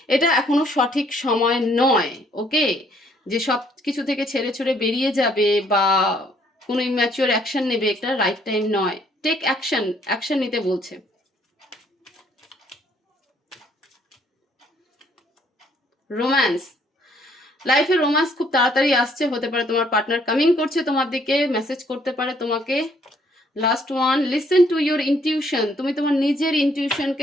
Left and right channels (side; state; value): both; normal; correlation 0.65